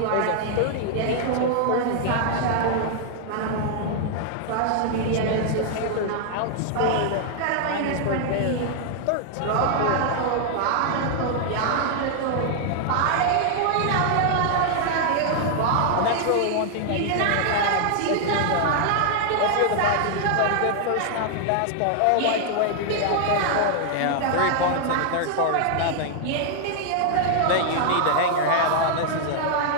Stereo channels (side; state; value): both; different; correlation 0.00